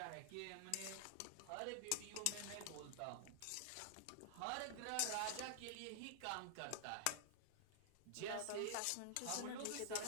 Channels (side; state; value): both; different; correlation -0.01